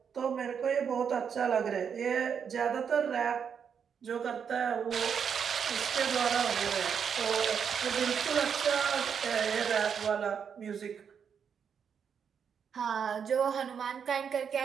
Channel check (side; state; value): left; quieter; 7.1 dB